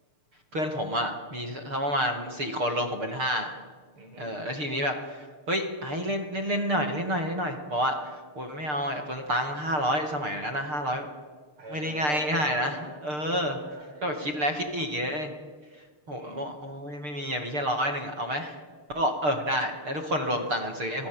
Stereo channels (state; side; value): late; left; 6.7 ms